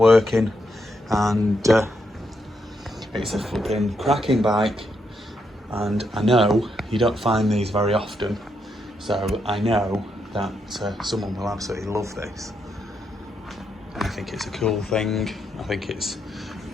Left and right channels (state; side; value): normal; both; correlation 0.80